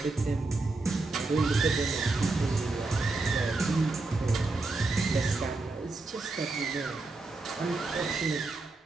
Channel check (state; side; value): quieter; left; 3.4 dB